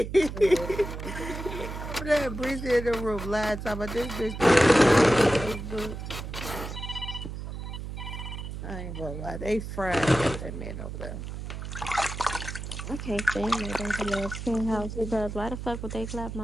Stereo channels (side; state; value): right; noise; hum, 7 dB below the sound